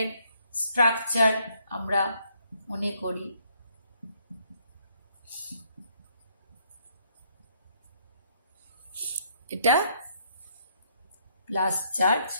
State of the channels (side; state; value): both; inverted; correlation -0.70